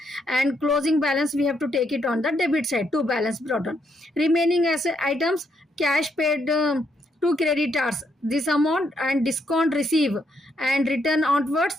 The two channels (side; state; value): both; normal; correlation 0.76